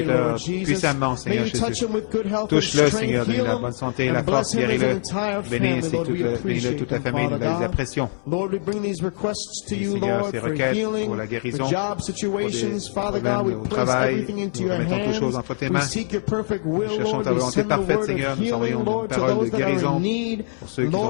puissamment, Seigneur Jésus. Touche-le, Seigneur. Donne-lui la bonne santé et la force. Guéris-le. Bénis ainsi que bénis-le toute la famille. Nous les apprécions. Et Seigneur, ces requêtes pour la guérison, pour des problèmes au travail, nous remettons toutes choses entre tes mains. Nous cherchons ta volonté parfaite, Seigneur. Nous envoyons une parole de guérison pour ceux qui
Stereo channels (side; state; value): right; silent; 64 dB below the other